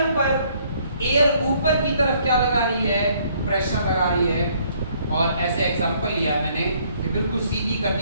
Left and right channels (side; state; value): both; inverted; correlation -0.64